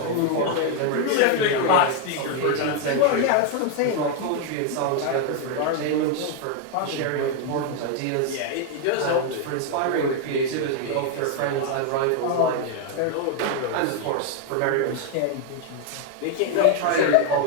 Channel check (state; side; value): different; both; correlation 0.00